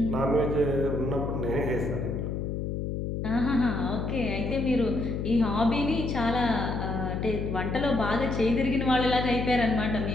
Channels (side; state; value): left; noise; hum, 3 dB below the sound